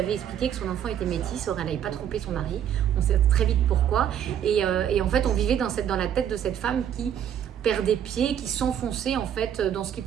expliqué que son enfant était métis, or elle n'avait pas trompé son mari. On sait très vite pourquoi. Et en fait on vivait dans la tête de cette femme qui perd des pieds, qui s'enfonçait en fait dans ce qui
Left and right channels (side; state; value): left; quieter; 9.6 dB